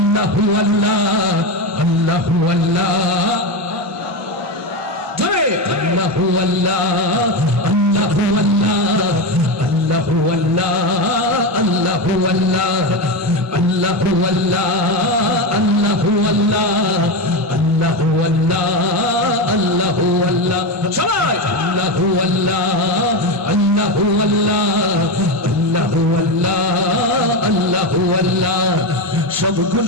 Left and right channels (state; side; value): normal; both; correlation 0.15